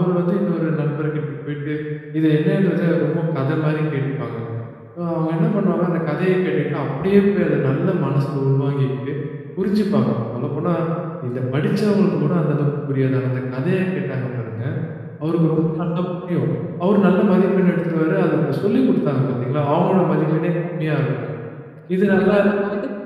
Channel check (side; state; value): both; identical; correlation 1.00